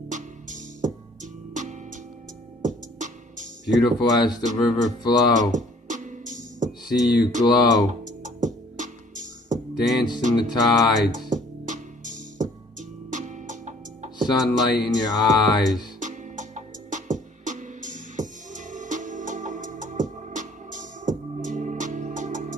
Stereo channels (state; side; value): normal; both; correlation 0.56